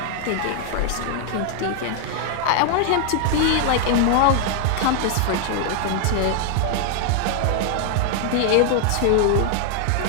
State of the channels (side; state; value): both; different; correlation 0.00